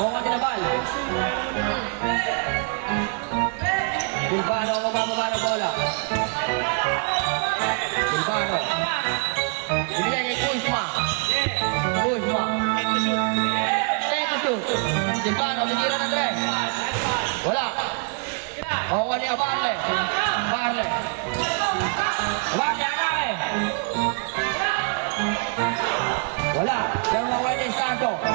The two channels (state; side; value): quieter; left; 39.6 dB